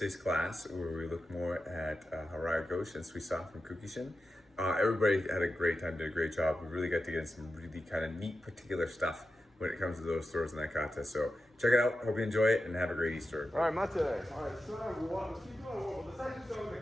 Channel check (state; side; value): normal; both; correlation 0.91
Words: class where we look more at Harai Goshi Suisya from Kukishin. Everybody had a great time, did a great job. We really got to get some really kind of neat particular stuff when it comes to those throws in that kata. So check it out. Hope you enjoy it and have a great Easter. All right, Mate. All right, so let's keep going. Well, let's actually start with